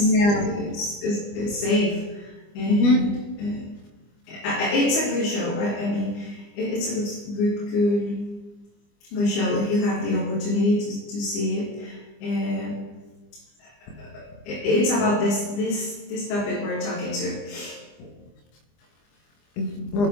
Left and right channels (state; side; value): late; right; 25 ms